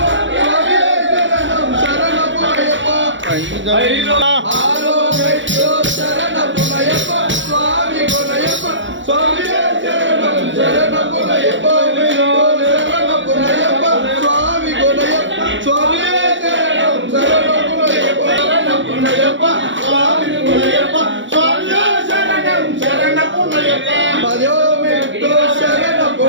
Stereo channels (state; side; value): late; left; 0.55 ms